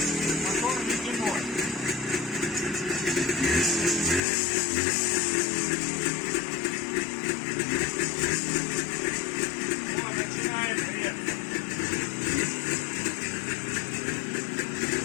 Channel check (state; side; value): drops out; right; at 4.2 s